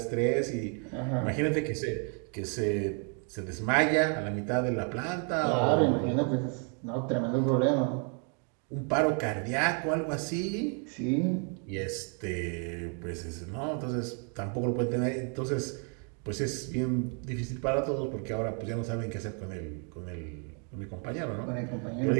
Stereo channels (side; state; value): left; quieter; 38.8 dB